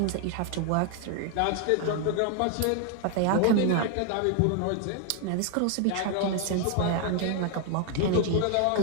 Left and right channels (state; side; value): different; both; correlation 0.01